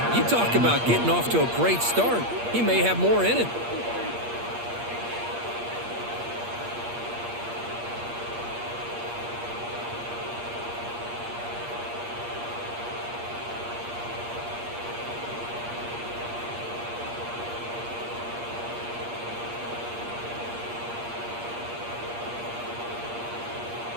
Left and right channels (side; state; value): left; late; 8.5 ms